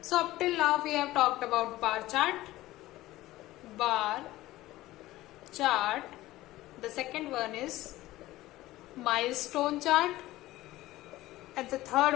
up till now we have talked about bar chart. The second one is milestone chart, and the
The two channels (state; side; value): quieter; right; 16.8 dB